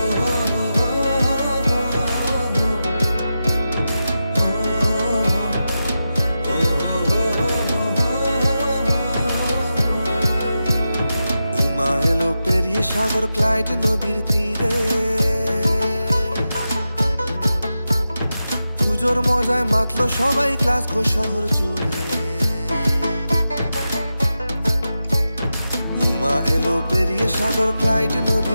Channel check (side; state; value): both; inverted; correlation -0.91